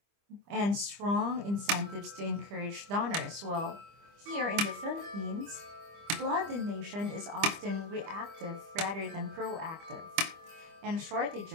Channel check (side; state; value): left; late; 25 ms